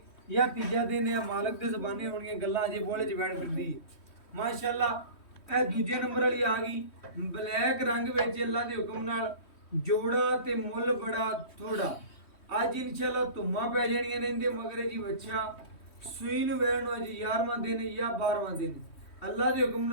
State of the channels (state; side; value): late; right; 3.1 ms